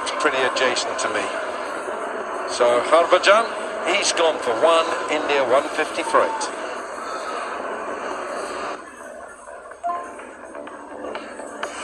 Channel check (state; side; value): identical; both; correlation 1.00